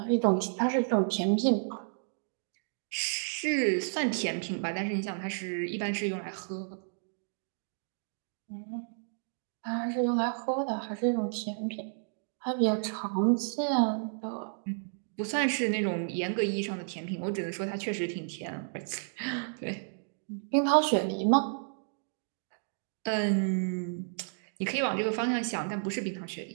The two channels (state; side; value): silent; left; digital silence